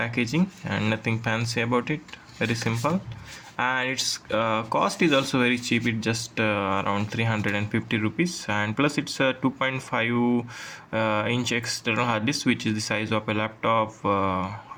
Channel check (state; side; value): identical; both; correlation 1.00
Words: and nothing fancy about it, very simple, and its cost is also very cheap. It's just around 350 rupees, and plus it's a 2.5 inch external hard disk, which is the size of a laptop